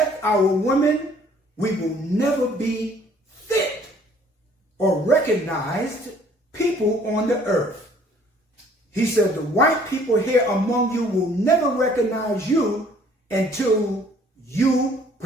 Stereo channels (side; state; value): both; normal; correlation 0.58